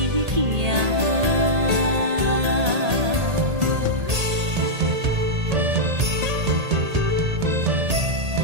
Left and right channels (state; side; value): late; left; 1.8 ms